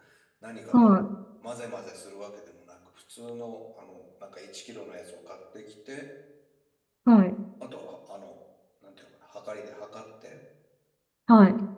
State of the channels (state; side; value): identical; both; correlation 1.00